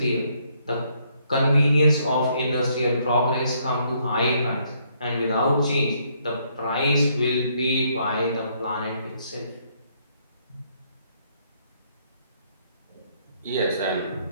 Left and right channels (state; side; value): inverted; both; correlation -0.70